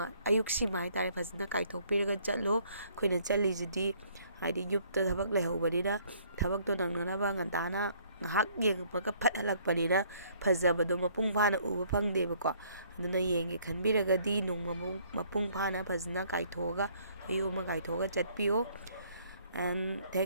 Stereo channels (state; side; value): inverted; both; correlation -0.62